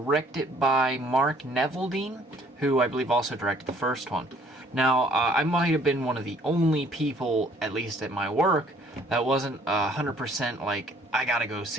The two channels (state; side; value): normal; both; correlation 0.60